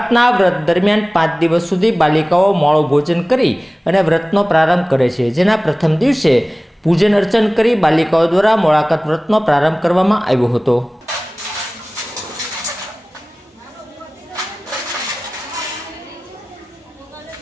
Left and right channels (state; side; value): normal; both; correlation 0.98